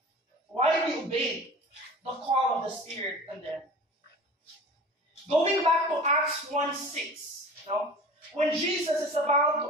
Why they obeyed the call of the Spirit in them? Going back to Acts 1:6, when Jesus is about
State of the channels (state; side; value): normal; both; correlation 0.39